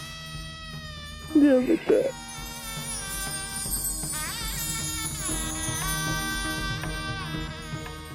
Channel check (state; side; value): identical; both; correlation 1.00